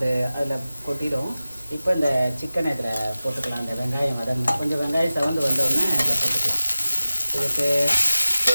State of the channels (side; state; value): both; inverted; correlation -0.95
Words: கொட்டிடும். இப்போ இந்த சிக்கனை இதில் போட்டுக்கலாம். இந்த வெங்காயம் கொஞ்சம் வெங்காயம் சவந்து வந்தோடனே இதில் போட்டுக்கலாம். இதுக்கு